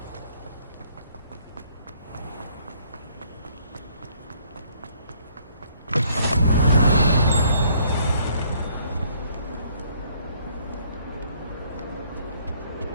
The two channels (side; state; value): both; inverted; correlation -0.64